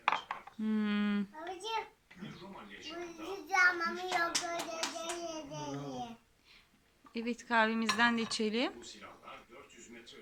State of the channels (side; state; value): both; identical; correlation 1.00